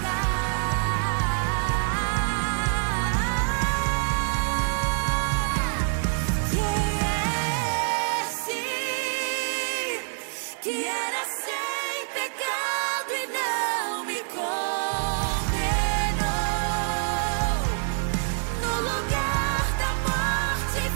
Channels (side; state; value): left; silent; 56 dB below the other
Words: lugar da morte,